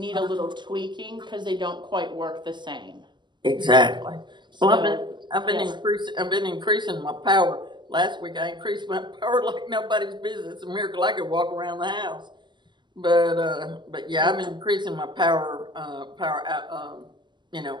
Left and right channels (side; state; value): left; late; 0.22 ms